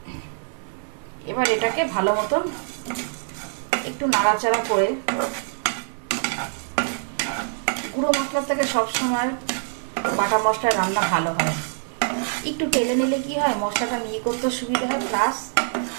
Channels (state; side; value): silent; left; 62 dB below the other